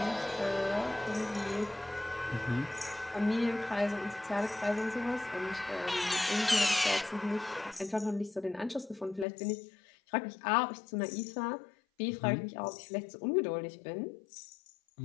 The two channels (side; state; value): right; drops out; at 9.2 s